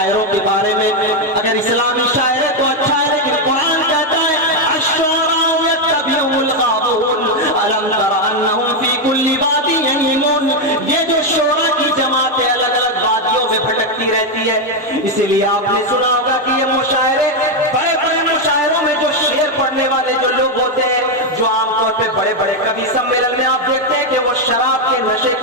کے بارے میں اگر اسلامی شاعر ہے تو اچھا ہے، لیکن قرآن کہتا ہے الشعراء یتبعهم الغاوون الم تر انہم فی کل وادی یہیمون۔ یہ جو شعراء کی جماعتیں الگ الگ وادیوں میں بھٹکتی رہتی ہے، اسی لیے آپ نے سنا ہوگا کہ یہ مشاعرے، بڑے بڑے مشاعروں میں جو شعر پڑھنے والے جو لوگ ہوتے ہیں، جو عام طور پہ بڑے بڑے کبھی سمیلن میں آپ دیکھتے ہیں کہ وہ شراب کے نشے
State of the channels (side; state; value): both; normal; correlation 0.04